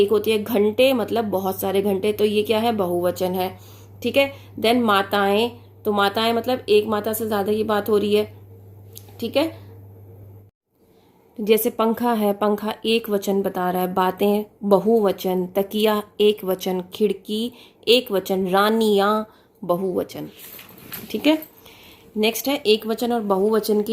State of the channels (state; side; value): identical; both; correlation 1.00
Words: होती है, घंटे मतलब बहुत सारे घंटे, तो ये क्या है, बहुवचन है। ठीक है। देन माताएं, तो माताएं मतलब एक माता से ज्यादा की बात हो रही है। ठीक है। जैसे पंखा है, पंखा एक वचन बता रहा है। बातें बहुवचन, तकिया एक वचन, खिड़की एक वचन, रानियां बहुवचन। ठीक है। नेक्स्ट है एक वचन और बहुवचन